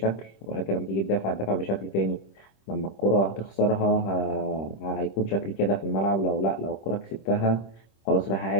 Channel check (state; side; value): late; right; 26 ms